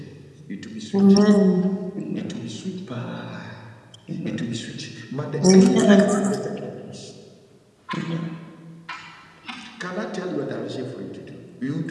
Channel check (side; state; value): both; identical; correlation 1.00